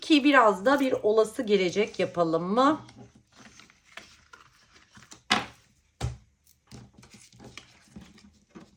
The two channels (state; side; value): identical; both; correlation 1.00